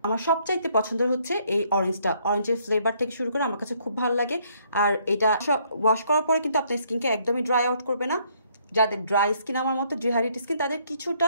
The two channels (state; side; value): inverted; both; correlation -0.68